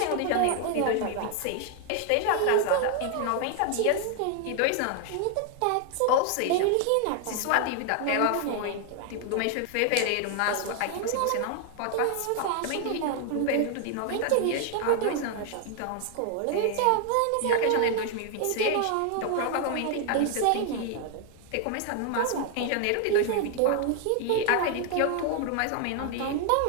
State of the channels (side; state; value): both; different; correlation 0.00